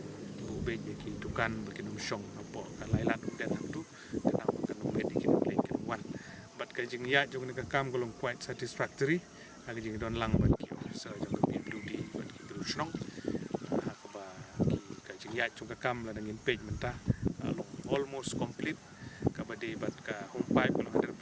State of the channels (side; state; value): both; identical; correlation 1.00